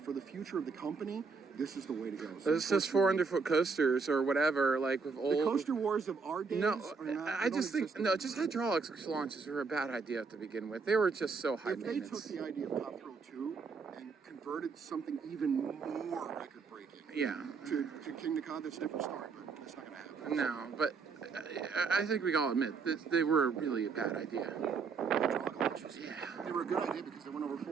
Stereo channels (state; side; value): quieter; left; 4.9 dB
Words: for the future of the company, this is the way to go. So It's just 400-foot coasters or whatever, like with old. the coaster wars of our days No, are not. I just think just hydraulics launches were a bad idea to begin with. They were just so high If they took maintenance. the idea of Top Thrill 2 and converted something even more record-breaking Yeah. to Kingda, that's a different story, but that's not going to happen. No, but I think we can all admit that they were really a bad idea. Hydraulic launches, they were a good idea because they went over